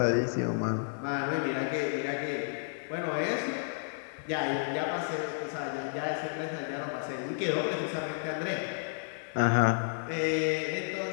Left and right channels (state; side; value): silent; right; digital silence